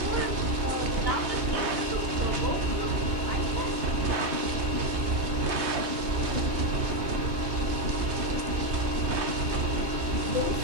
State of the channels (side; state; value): left; late; 3.2 ms